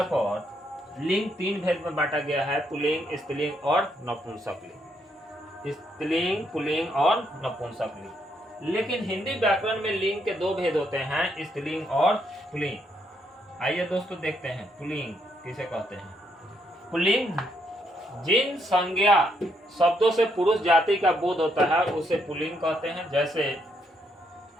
पर लिंग तीन भेद में बांटा गया है, पुल्लिंग, स्त्रीलिंग और नपुंसकलिंग। स्त्रीलिंग, पुल्लिंग और नपुंसकलिंग। लेकिन हिंदी व्याकरण में लिंग के दो भेद होते हैं, स्त्रीलिंग और पुल्लिंग। आइए दोस्तों देखते हैं पुल्लिंग किसे कहते हैं। पुल्लिंग जिन संज्ञा शब्दों से पुरुष जाति का बोध होता है, उसे पुल्लिंग कहते हैं। जैसे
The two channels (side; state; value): both; normal; correlation 0.75